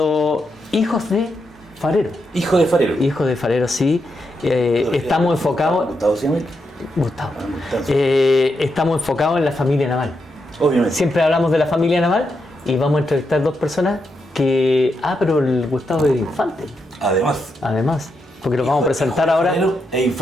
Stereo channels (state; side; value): normal; both; correlation 0.83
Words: hijos de farero. Hijo de farero. Hijos de farero, sí. Estamos enfocados... ¿Gustavo se llama? Gustavo. Gustavo. Estamos enfocados en la familia naval. Obviamente. Siempre hablamos de la familia naval y vamos a entrevistar dos personas que... Ah, pero el Gustavo es infante. Además, porque lo vamos a presentar ahora. E